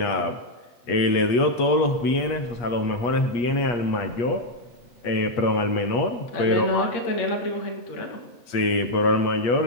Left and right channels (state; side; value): late; right; 8.4 ms